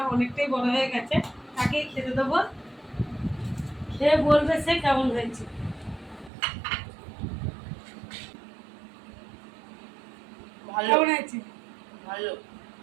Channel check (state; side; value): drops out; left; at 6.3 s